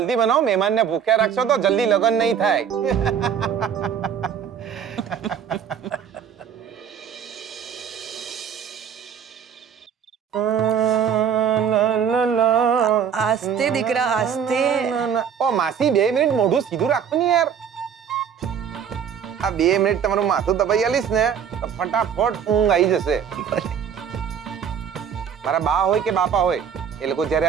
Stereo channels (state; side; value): quieter; left; 7.8 dB